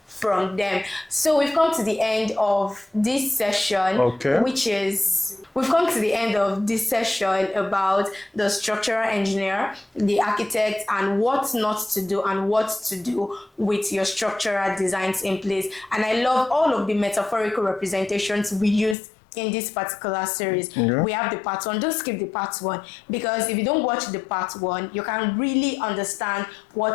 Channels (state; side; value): drops out; right; at 18.9 s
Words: from them. So we've come to the end of this session, we've come to the end of this session about the structural engineer, the architect, and what not to do and what to do with your structural designs in place. And I love all of the metaphorical representations we used in this particular series. We have the part 1. Don't skip the part 1, because if you don't watch the part 1, you can really understand